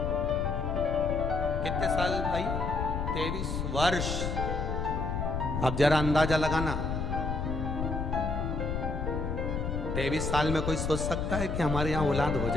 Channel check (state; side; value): noise; left; rumble, 2 dB below the sound